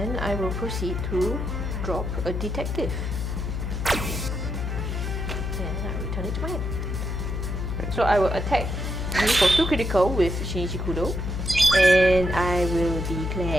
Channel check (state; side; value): noise; left; hum, 3 dB below the sound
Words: I will proceed to drop a detective. And I return it to my hand. So I will attack you for 2 critical with Shinichi Kudo. And I will